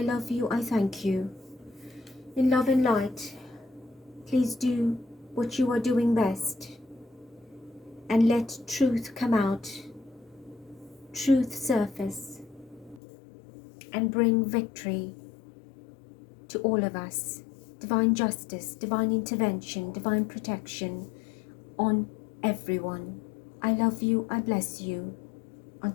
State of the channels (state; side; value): drops out; right; at 13.0 s